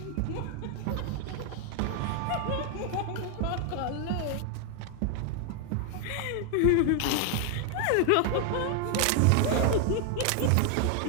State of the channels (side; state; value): both; different; correlation 0.00